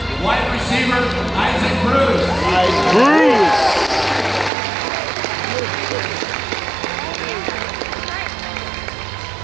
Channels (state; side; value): drops out; left; at 4.5 s